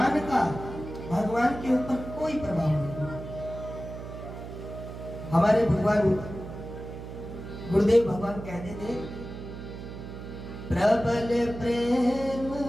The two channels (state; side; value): noise; right; hum, 10 dB below the sound